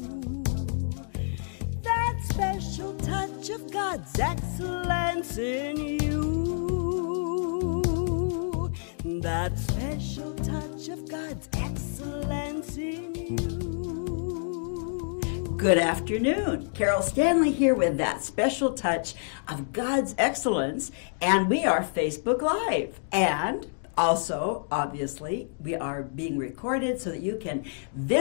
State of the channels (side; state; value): right; silent; digital silence